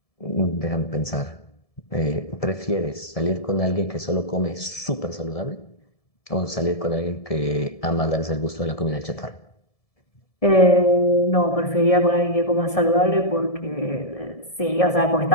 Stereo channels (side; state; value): right; late; 1.7 ms